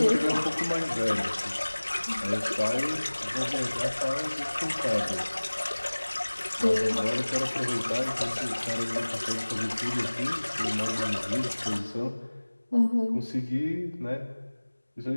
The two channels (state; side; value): inverted; both; correlation -1.00